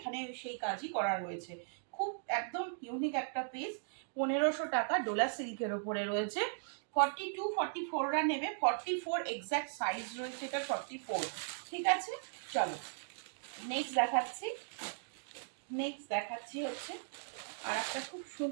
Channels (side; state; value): left; silent; digital silence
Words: সেই কাজই করা রয়েছে। খুব একদম ইউনিক একটা পিস। 1500 টাকা ডোলা সিল্কের ওপরে রয়েছে। 42 44রা নেবে, 44 এক্স্যাক্ট সাইজ রয়েছে এটা, 44। ঠিক আছে, চলো নেক্সট দেখাচ্ছি। নেক্সট দেখাচ্ছি হচ্ছে আর একটা খুব